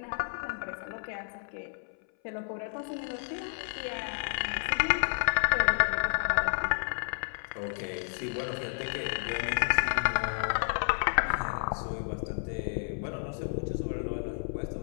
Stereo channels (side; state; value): right; silent; 57 dB below the other